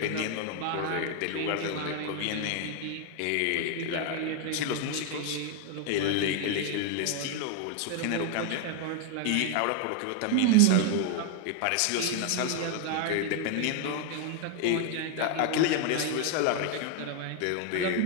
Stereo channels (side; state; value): both; different; correlation 0.00